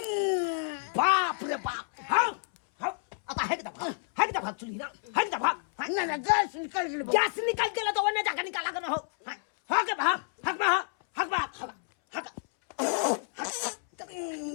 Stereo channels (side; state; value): right; silent; 58 dB below the other